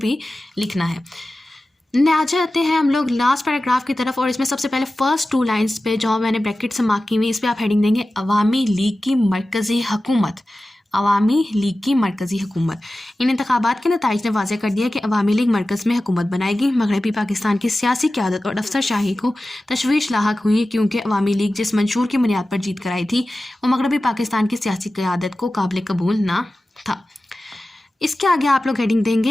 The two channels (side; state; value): both; normal; correlation 0.95